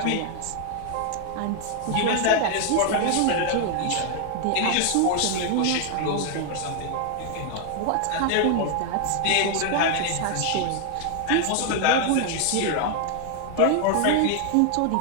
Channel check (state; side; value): different; both; correlation 0.00